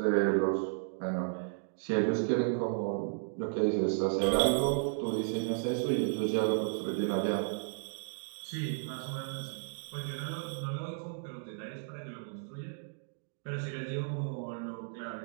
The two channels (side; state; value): left; silent; digital silence